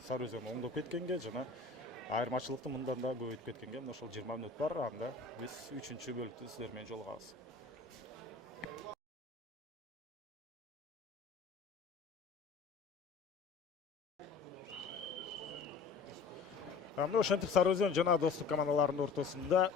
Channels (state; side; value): quieter; right; 4.6 dB